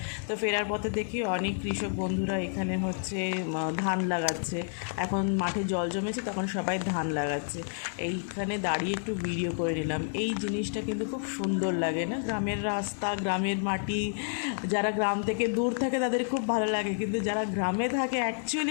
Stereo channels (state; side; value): silent; right; 58 dB below the other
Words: তো ফেরার পথে দেখি অনেক কৃষক বন্ধুরা এখানে হচ্ছে ধান লাগাচ্ছে। এখন মাঠে জল জমেছে, তখন সবাই ধান লাগাচ্ছে। এইখানে দাঁড়িয়ে একটু ভিডিও করে নিলাম। এই জিনিসটা কিন্তু খুব সুন্দর লাগে না? গ্রামের রাস্তা, গ্রামের মাটি, যারা গ্রাম থেকে দূর থাকে তাদের খুব ভালো লাগে, কিন্তু যারা গ্রামে থাকে